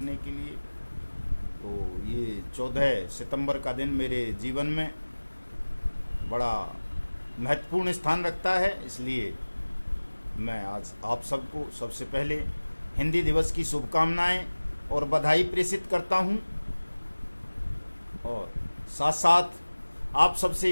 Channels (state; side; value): inverted; both; correlation -1.00